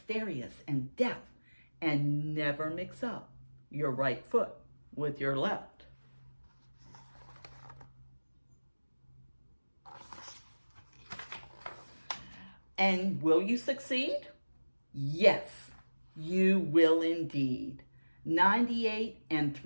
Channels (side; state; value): both; inverted; correlation -1.00